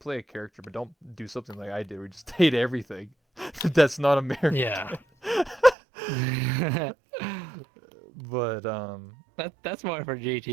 a character, but don't do something like I did, where you just hate everything that's not Yeah. American. But That's more for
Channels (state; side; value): drops out; left; at 5.8 s